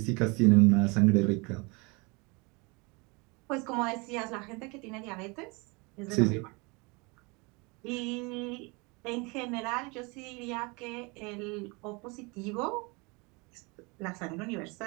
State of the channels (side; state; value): left; quieter; 28.5 dB